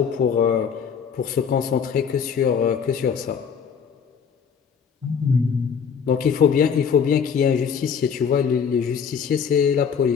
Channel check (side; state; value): right; quieter; 6.8 dB